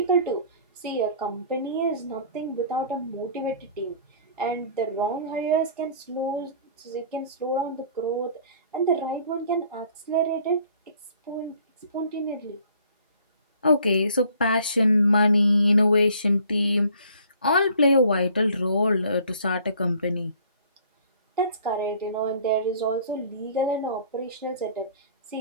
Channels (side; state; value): both; inverted; correlation -0.54